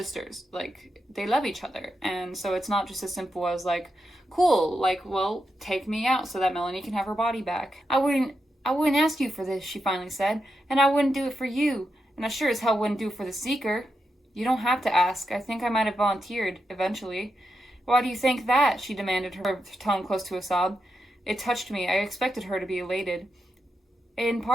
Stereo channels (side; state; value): both; normal; correlation 0.86